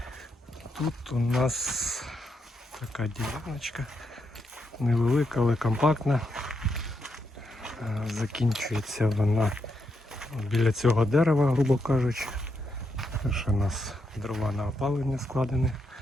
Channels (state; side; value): normal; both; correlation 0.81